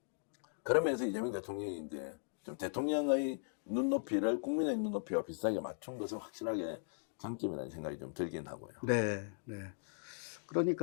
그러면서 이재명 대통령이 이제 좀 대통령의 눈높이를 국민의 눈높이와 비슷하게 맞춘 것은 확실하게 장점이라는 생각이 좀 들긴 하고요. 네, 네.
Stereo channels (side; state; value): right; silent; digital silence